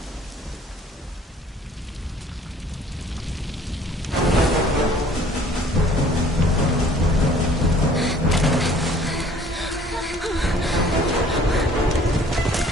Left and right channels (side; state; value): both; normal; correlation 0.55